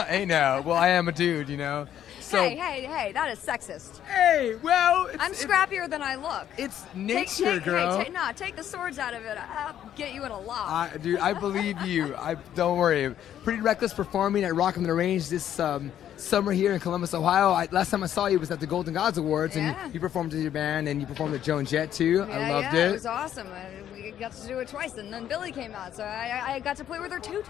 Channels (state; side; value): quieter; right; 10.6 dB